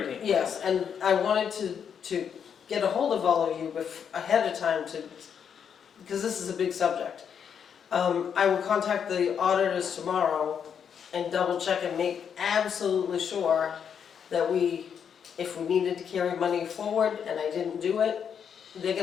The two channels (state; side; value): quieter; right; 7.6 dB